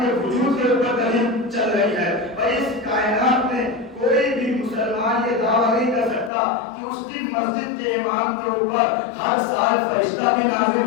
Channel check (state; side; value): drops out; right; at 6.3 s